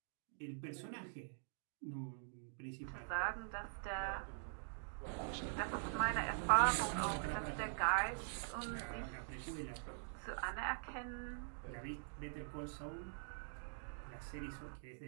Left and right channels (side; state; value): left; silent; digital silence